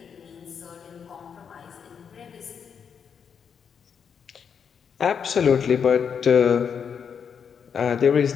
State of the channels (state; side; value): quieter; right; 7.0 dB